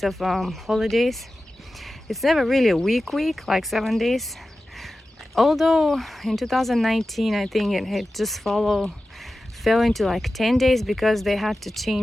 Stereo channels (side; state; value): both; normal; correlation 0.94